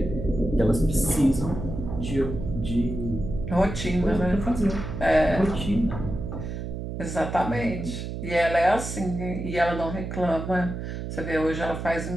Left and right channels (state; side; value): noise; right; hum, 6 dB below the sound